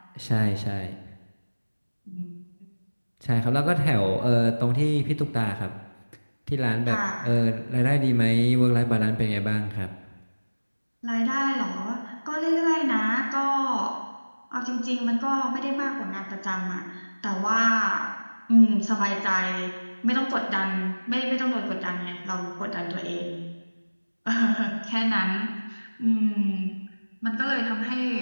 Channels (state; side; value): inverted; both; correlation -1.00